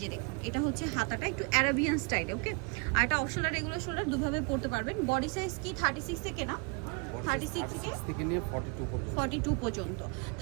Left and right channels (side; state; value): left; quieter; 32.4 dB